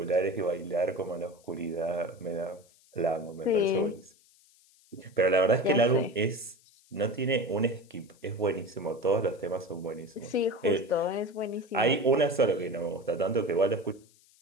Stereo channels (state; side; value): noise; left; hiss, 30 dB below the sound